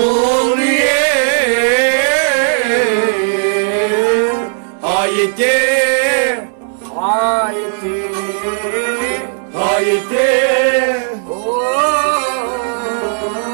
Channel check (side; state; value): left; silent; 67 dB below the other